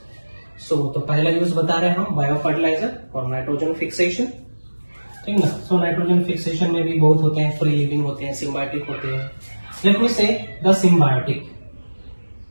So तो पहला use बता रहे हैं हम बायो फर्टिलाइजर और नाइट्रोजन फिक्सेशन, ठीक ना। सो नाइट्रोजन फिक्सेशन में भी बहुत होते हैं, फ्री लिविंग होते हैं, सिम्बायोटिक होते हैं। लेट मी से द सिम्बायोटिक।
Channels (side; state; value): both; inverted; correlation -1.00